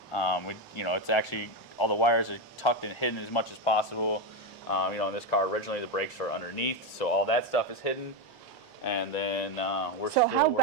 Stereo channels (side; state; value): both; normal; correlation 0.09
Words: It's actually all the wires are tucked and hidden as much as possible. In this car originally the brakes are underneath, so all that stuff is hidden. And then we're So how